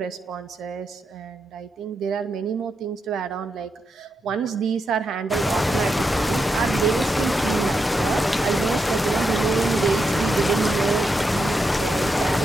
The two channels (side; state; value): both; normal; correlation 0.84